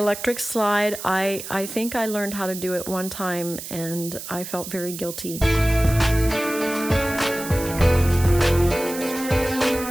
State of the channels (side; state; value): right; noise; hiss, 10 dB below the sound